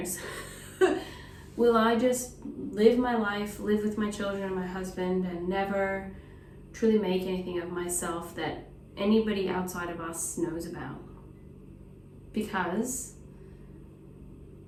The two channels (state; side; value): identical; both; correlation 1.00